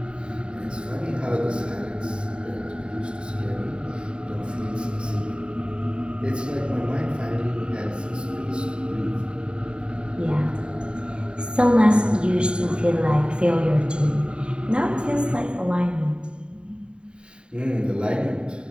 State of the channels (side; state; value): left; late; 0.052 ms